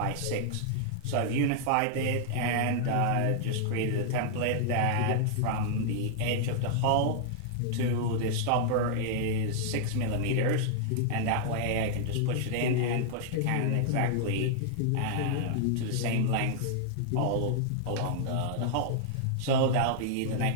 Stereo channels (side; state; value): both; different; correlation -0.01